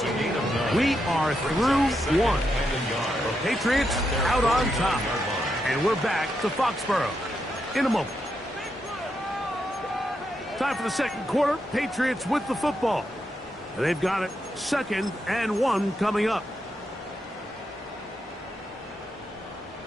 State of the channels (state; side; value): normal; both; correlation 0.83